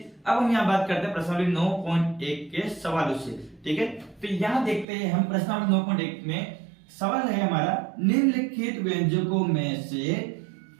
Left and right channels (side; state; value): left; drops out; at 4.9 s